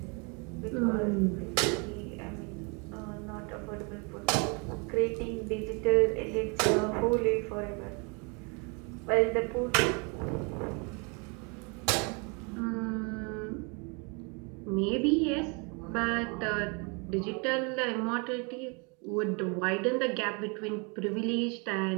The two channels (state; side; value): quieter; left; 32.8 dB